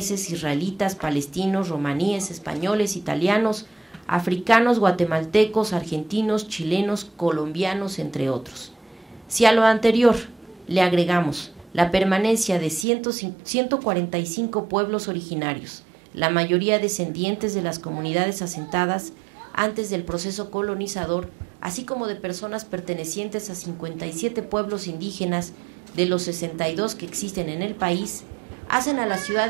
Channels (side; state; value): left; drops out; at 12.9 s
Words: israelitas, palestinos, romaníes, españoles, italianos, africanos, guatemaltecos, argentinos, chilenos, colombianos, entre otros. Si a lo anterior le agregamos la permanencia de 145 pueblos originarios, la mayoría descendientes de las comunidades asentadas antes del proceso colonizador, así como de personas pertenecientes a 57 pueblos indígenas de los 62 que existen en el país, hacen a la Ciudad